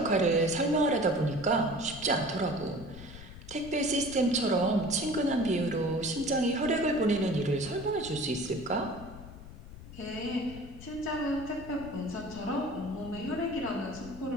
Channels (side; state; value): left; noise; rumble, 15 dB below the sound